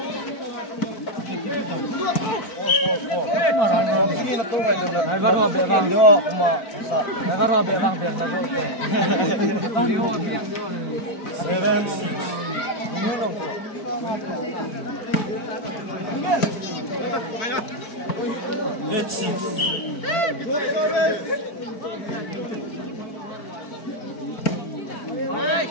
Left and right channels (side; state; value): right; late; 4.5 ms